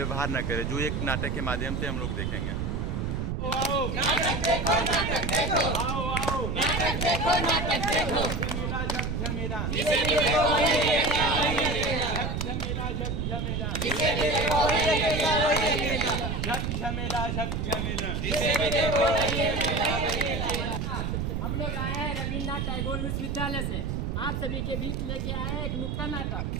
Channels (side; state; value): right; noise; rumble, 1 dB below the sound